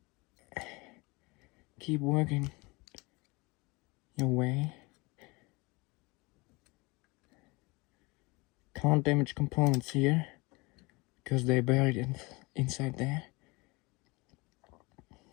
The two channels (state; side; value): quieter; right; 25.6 dB